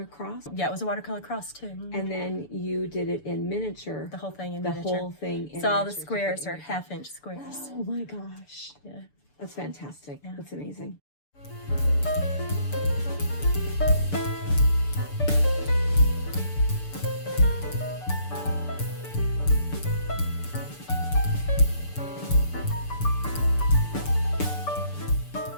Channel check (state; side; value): late; right; 6.9 ms